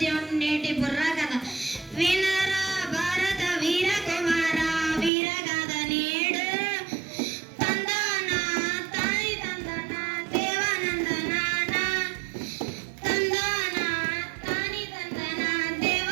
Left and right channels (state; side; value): drops out; left; at 5.1 s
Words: నేటి బుర్రా కథ వినరా భారత వీర కుమార వీరగాథ నేడు. తందన తాని తందన దేవానందన తందన తాని తందన